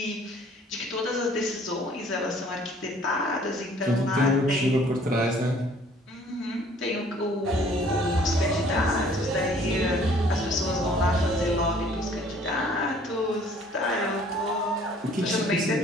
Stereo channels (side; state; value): both; normal; correlation 0.56